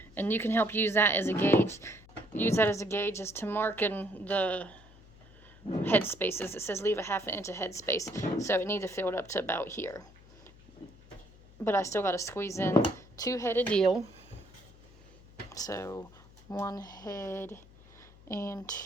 And you can help use that as a gauge. Use that as a gauge as to marking the head spaces. It says leave a ½ inch of head space. So it needs to fill it up to about here. But I still got to squeeze in 2 head of dill. So 1 head and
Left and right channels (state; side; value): noise; left; hum, 23 dB below the sound